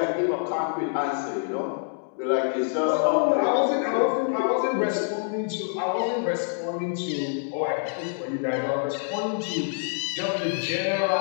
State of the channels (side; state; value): right; silent; 61 dB below the other